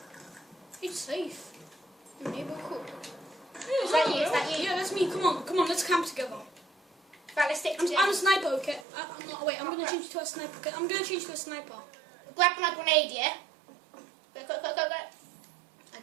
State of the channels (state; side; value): drops out; left; at 8.8 s